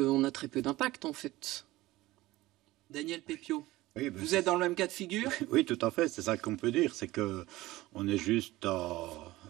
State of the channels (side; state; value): left; quieter; 18.1 dB